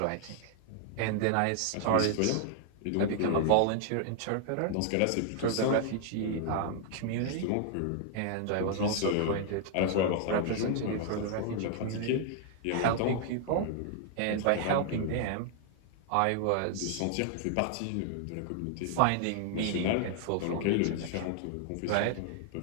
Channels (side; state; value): both; different; correlation 0.00